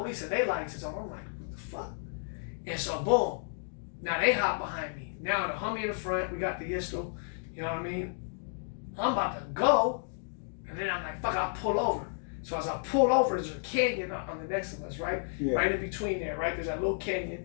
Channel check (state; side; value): silent; right; digital silence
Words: and they lights is on. I'm like, what the fuck? And so boom, now they hop behind me. Now the homie in the front, we got the pistol, you know what I mean? I'm about to go, and then I'm like, fuck, I'll pull over. So as I pull over, there's a canyon on the next of us, right? Yeah. Right in between there, right? There's that little